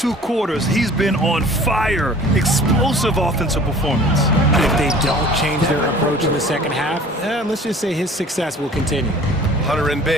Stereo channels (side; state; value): both; normal; correlation 0.47